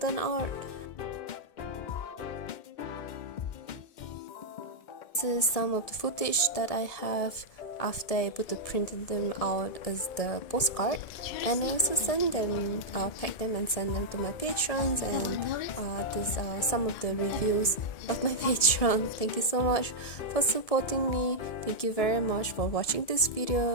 out. This is some of the footage that I have after I put the printed them out as the postcard, and I also send them, pack them and send them to my patrons, and these are some of the reviews of my patron. Thank you so much for supporting me. Thank you very much for watching this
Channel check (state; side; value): late; right; 1.7 ms